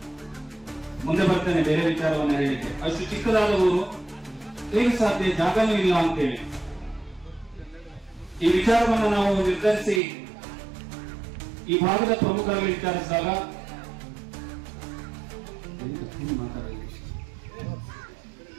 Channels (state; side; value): drops out; left; at 10.0 s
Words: ಮುಂದೆ ಬರ್ತೇನೆ ಬೇರೆ ವಿಚಾರವನ್ನ ಹೇಳಿಕೆ. ಅಷ್ಟು ಚಿಕ್ಕದಾದ ಊರು ಹೇಗೆ ಸಾಧ್ಯ? ಜಾಗನೂ ಇಲ್ಲ ಅಂತೇಳಿ ಈ ವಿಚಾರವನ್ನು ನಾವು ನಿರ್ಧರಿಸಿ ಈ ಭಾಗದ ಪ್ರಮುಖರಲ್ಲಿ ವಿಚಾರಿಸಿದಾಗ,